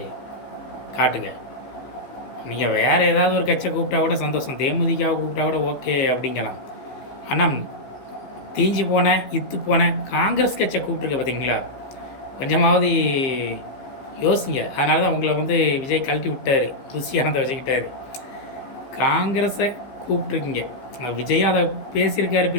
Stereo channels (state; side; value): late; right; 15 ms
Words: காட்டுங்க. நீங்கள் வேறு ஏதாவது ஒரு கட்சியை கூப்பிட்டா கூட சந்தோஷம், தேமுதிகாவை கூப்பிட்டா கூட ஓகே அப்படிங்கலாம். ஆனால் தீஞ்சு போனேன் இத்து போனேன் காங்கிரஸ் கட்சியை கூப்பிட்ருக்க பார்த்தீங்களா, கொஞ்சமாவது யோசிங்க. அதனால தான் உங்களை வந்து விஜய் கழட்டி விட்டார், ருசியானதை வச்சுக்கிட்டார். காங்கிரஸை கூப்பிட்ருக்கீங்க, விஜயும் அதை பேசியிருக்காரு